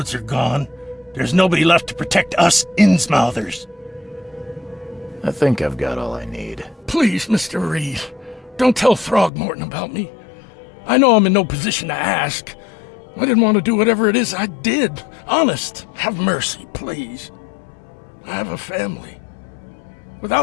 are gone, there's nobody left to protect us Innsmouthers. I think I've got all I need. Please, Mr. Reed, don't tell Throgmorton about me. I know I'm in no position to ask. I didn't want to do whatever it is I did. Honest, have mercy, please. I have a family.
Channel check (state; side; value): drops out; right; at 9.3 s